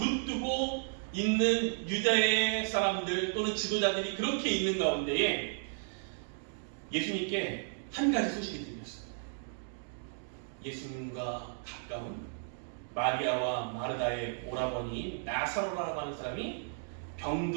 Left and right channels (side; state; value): left; silent; digital silence